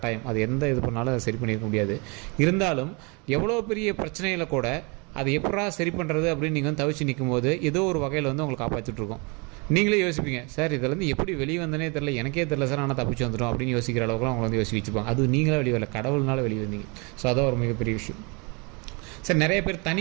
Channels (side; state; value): left; quieter; 31.0 dB